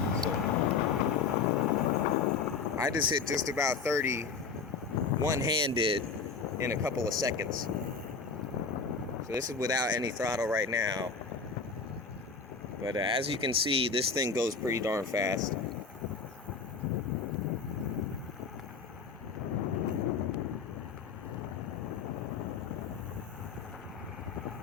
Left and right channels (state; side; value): quieter; right; 5.1 dB